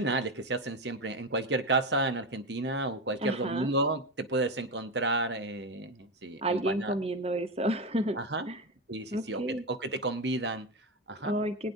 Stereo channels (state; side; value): normal; both; correlation 0.16